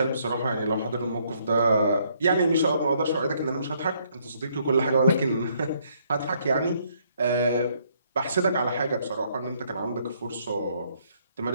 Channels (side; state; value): both; inverted; correlation -0.69